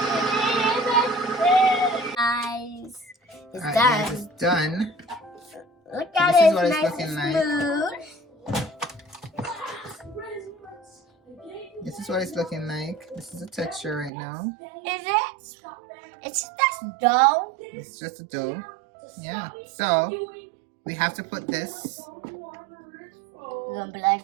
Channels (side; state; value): left; drops out; at 14.1 s